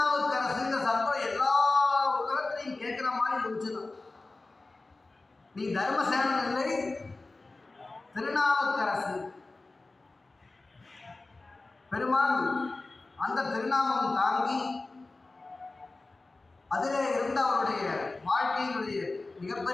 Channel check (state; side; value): quieter; right; 3.3 dB